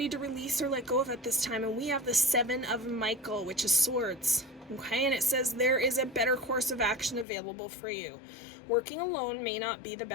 to release or let go of at this time? And we have the Seven of Michael, which is swords. Okay, and it says there is a better course of action available for you. Working alone may not be the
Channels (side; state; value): right; drops out; at 7.2 s